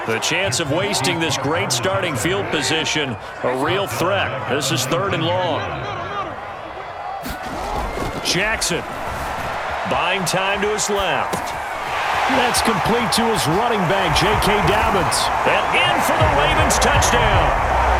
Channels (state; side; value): identical; both; correlation 1.00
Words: The chance of wasting this great starting field position, a real threat. This is 3rd and long. Jackson buying time to his left. That's complete to his running back, J.K. Dobbins. And in for the Ravens touchdown.